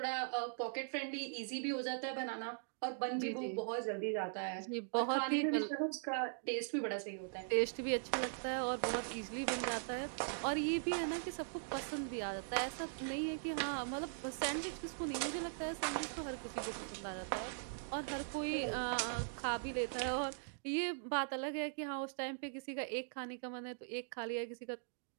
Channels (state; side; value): silent; left; digital silence